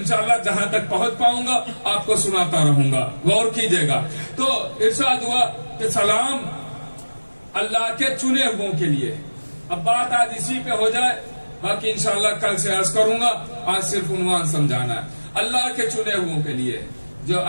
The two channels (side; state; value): both; inverted; correlation -1.00